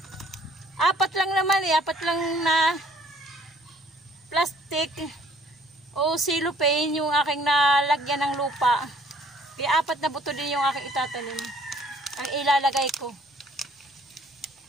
Apat lang na plastic o cellophane yung aking nalagyan ng lupa. Kaya 4 na buto din yung aking itatanim. Ang ilalagay ko.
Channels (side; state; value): both; normal; correlation 0.59